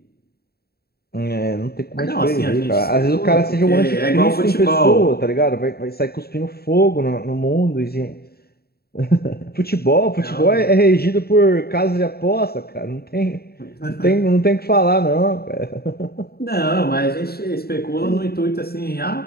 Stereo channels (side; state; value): right; late; 0.45 ms